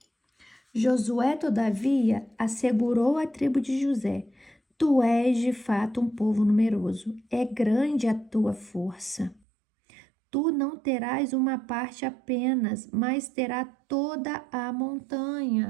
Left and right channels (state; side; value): drops out; left; at 9.4 s